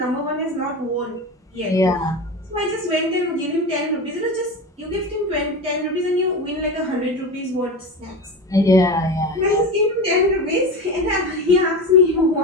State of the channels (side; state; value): both; normal; correlation 0.25